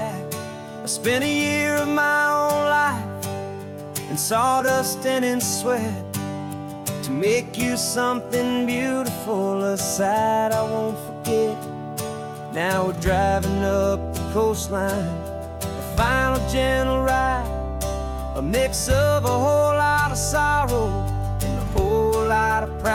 I spent a year of my own life in sawdust and in sweat to make you something beautiful, a sight I won't forget. Now we're driving up the coastline, a final gentle ride, a mix of a whole lot of sorrow and a whole lot of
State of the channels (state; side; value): identical; both; correlation 1.00